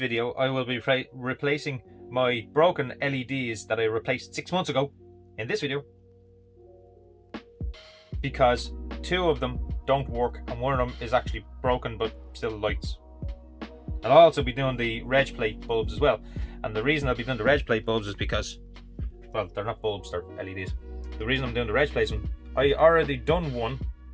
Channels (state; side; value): identical; both; correlation 1.00